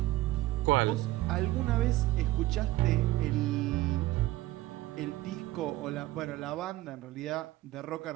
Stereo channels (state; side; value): quieter; left; 17.2 dB